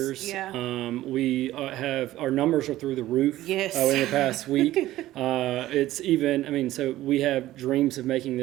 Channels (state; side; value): quieter; left; 15.3 dB